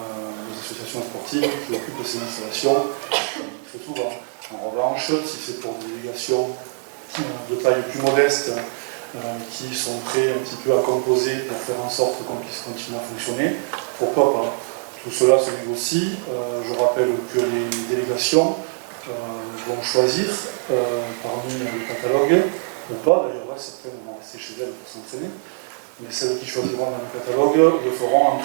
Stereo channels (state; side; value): silent; left; 63 dB below the other